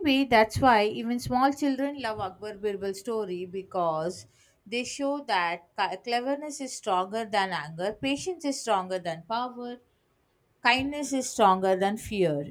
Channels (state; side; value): identical; both; correlation 1.00